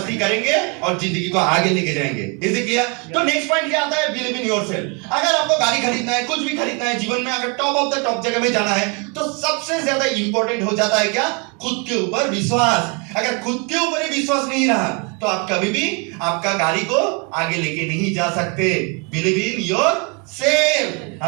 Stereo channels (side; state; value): left; quieter; 32.8 dB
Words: करेंगे और जिंदगी को आगे लेके जाएंगे। Is it clear? तो नेक्स्ट पॉइंट क्या आता है? Believe in yourself. अगर आपको गाड़ी खरीदना है, कुछ भी खरीदना है जीवन में, अगर टॉप ऑफ द टॉप जगह में जाना है, तो सबसे ज्यादा इंपॉर्टेंट हो जाता है क्या? खुद के ऊपर विश्वास। अगर खुद के ऊपर ही विश्वास नहीं रहा तो आप कभी भी आपका गाड़ी को आगे लेके नहीं जा सकते। Believe in yourself.